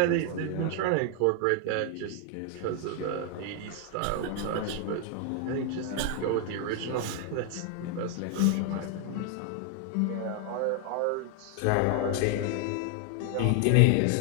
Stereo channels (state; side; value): different; both; correlation 0.00